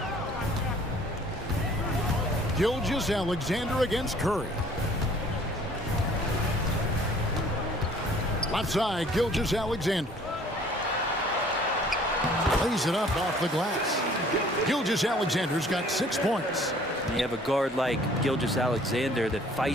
Gilgeous-Alexander against Curry. Left side, Gilgeous-Alexander. Lays it up off the glass. Gilgeous-Alexander's got 6 points. You have a guard like Gilgeous-Alexander that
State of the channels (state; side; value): normal; both; correlation 0.55